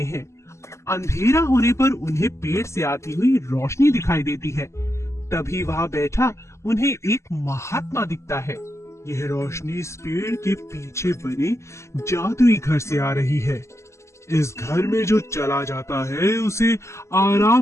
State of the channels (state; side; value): late; right; 0.13 ms